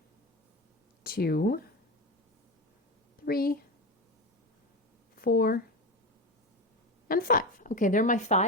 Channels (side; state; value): both; normal; correlation 0.21